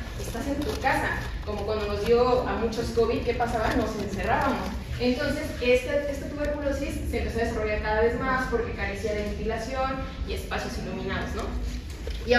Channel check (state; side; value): identical; both; correlation 1.00